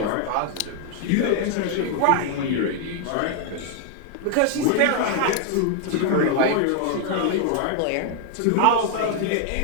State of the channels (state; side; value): different; both; correlation 0.00